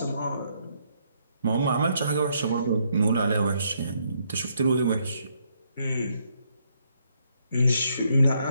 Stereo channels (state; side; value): inverted; both; correlation -0.73